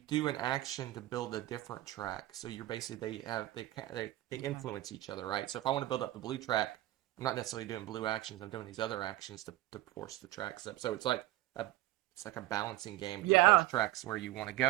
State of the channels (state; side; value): quieter; left; 16.5 dB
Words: an action to build a different track. So you're basically they influence each other, right? So if I want to build up the blue track, I'm not necessarily doing blue actions. I'm doing these other actions to force the tracks up. So it's like a balancing game. Yeah. Those tracks where you want to